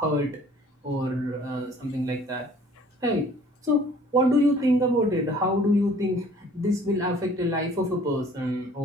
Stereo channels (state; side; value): normal; both; correlation 0.54